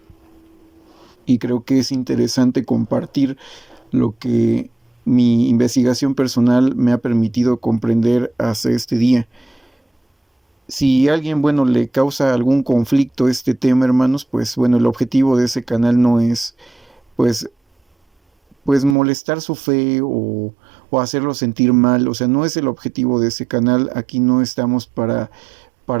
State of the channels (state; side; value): drops out; left; at 18.9 s